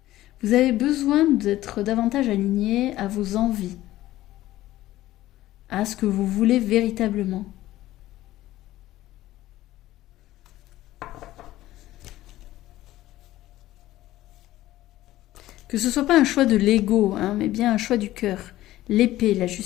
Vous avez besoin d'être davantage aligné à vos envies, à ce que vous voulez véritablement. Que ce ne soit pas un choix de l'ego, hein, mais bien un choix du cœur. L'épée, la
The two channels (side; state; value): right; quieter; 15.3 dB